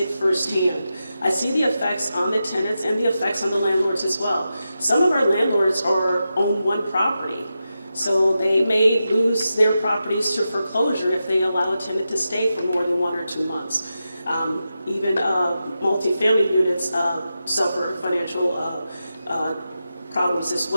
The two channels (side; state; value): both; inverted; correlation -0.90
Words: firsthand. I see the effects on the tenants and the effects on the landlords as well. Some of our landlords own one property, so they may lose their properties to foreclosure if they allow a tenant to stay for more than 1 or 2 months. Even multifamily units suffer financial problems as